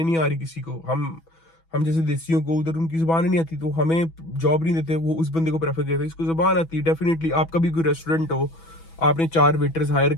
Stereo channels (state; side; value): late; right; 6.1 ms